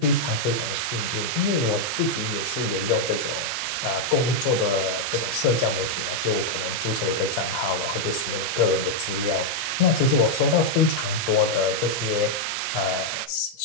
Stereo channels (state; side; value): normal; both; correlation -0.01